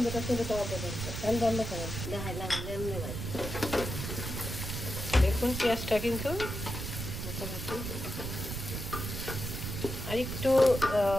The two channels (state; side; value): noise; right; rumble, 5 dB below the sound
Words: চলে যাওয়া পর্যন্ত। তেল বন্ধ করো। দেখুন পেঁয়াজটা কিন্তু মোটামুটি আর একটু